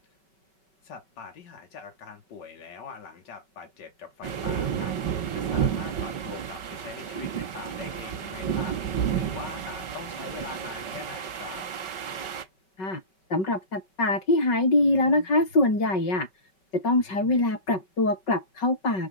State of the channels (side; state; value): right; late; 5.3 ms